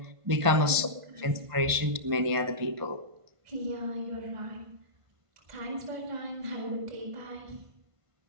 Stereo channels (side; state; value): left; late; 1.5 ms